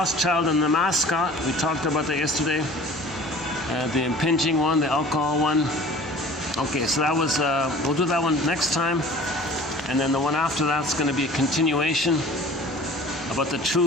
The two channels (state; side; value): normal; both; correlation 0.45